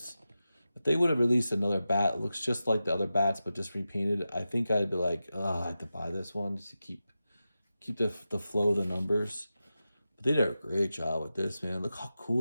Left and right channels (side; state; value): both; inverted; correlation -0.92